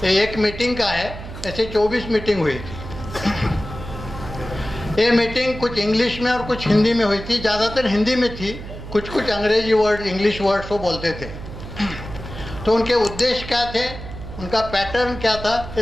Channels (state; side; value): noise; right; hum, 11 dB below the sound